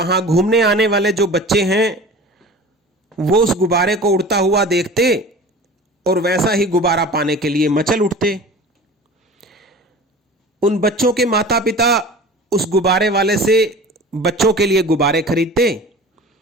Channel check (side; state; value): both; normal; correlation 0.39